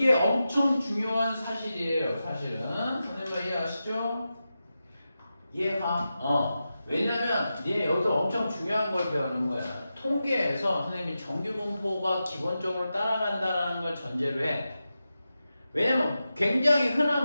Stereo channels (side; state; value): both; inverted; correlation -0.91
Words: 엄청 중요한 사실이에요. 사실은 선생님 이해하시죠? 이해가? 왜냐면 얘 여기서 엄청 중요한 걸 배우는 거야. 통계에서 선생님이 정규 분포가 기본적으로 따라간다는 걸 전제로 해. 왜냐면 굉장히